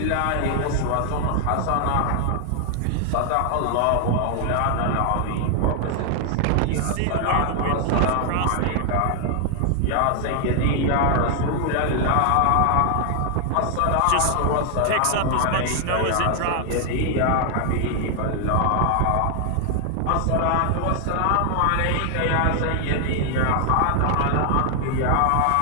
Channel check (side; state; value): both; different; correlation 0.00